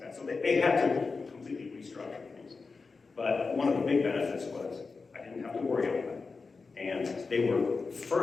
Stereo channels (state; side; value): quieter; right; 4.4 dB